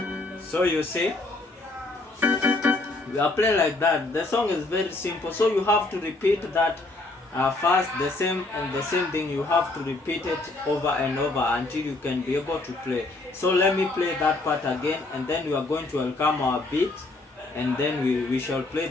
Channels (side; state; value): right; quieter; 3.0 dB